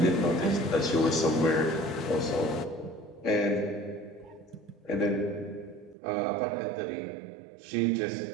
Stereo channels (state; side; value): drops out; left; at 6.0 s